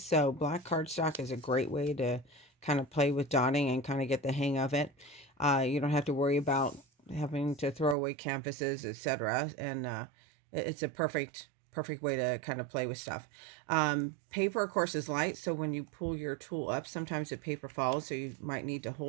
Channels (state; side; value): drops out; left; at 8.0 s